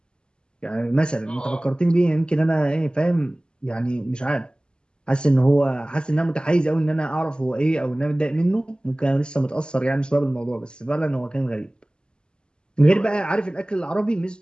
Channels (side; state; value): right; late; 0.049 ms